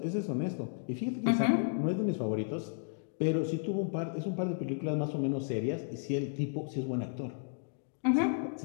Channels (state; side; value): silent; right; digital silence